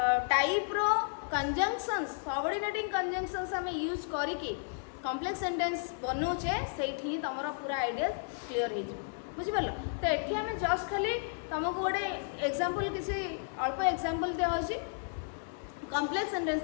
टाइप रो कंजंक्शंस सबऑर्डिनेटिंग कंजंक्शंस आम यूज करिकी कॉम्प्लेक्स सेंटेंस बनौचे से तुम पूरा आइडिया क्लीयर हो बुझिपार तो ये आम जस्ट खाली तुमको गोटे एग्जांपल किसी अल्प एग्जांपल दिखाई कॉम्प्लेक्स सेंटेंस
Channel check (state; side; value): silent; right; digital silence